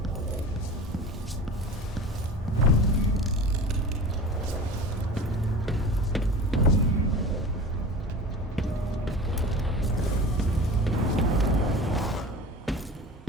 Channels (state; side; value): normal; both; correlation 0.36